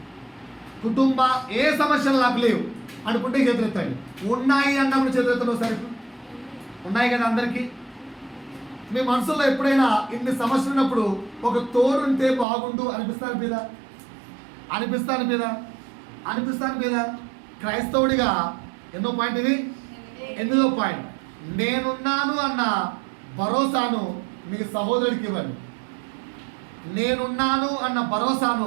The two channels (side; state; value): left; drops out; at 12.5 s